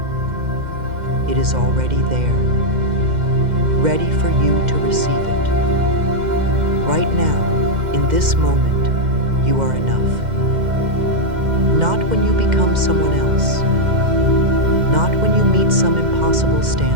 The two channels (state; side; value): late; left; 2.1 ms